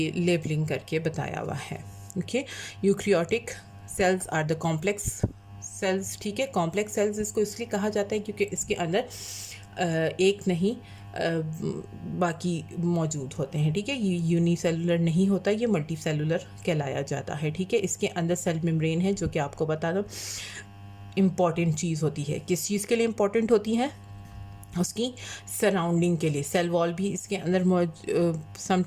लेबलिंग करके बताया हुआ है, okay. Eukaryotic cells are the complex cells, ठीक है। कॉम्प्लेक्स सेल्स इसको इसलिए कहा जाता है क्योंकि इसके अंदर एक नहीं बाकी मौजूद होते हैं, ठीक है। ये यूनिसेलुलर नहीं होता, ये मल्टी सेलुलर कहलाया जाता है, ठीक है। इसके अंदर सेल मेम्ब्रेन है, जो कि आपको बता दो इम्पॉर्टेंट चीज़ होती है। किस चीज़ के लिए इम्पॉर्टेंट होती है, उसकी सराउंडिंग के लिए। सेल वॉल भी इसके अंदर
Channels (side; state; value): both; identical; correlation 1.00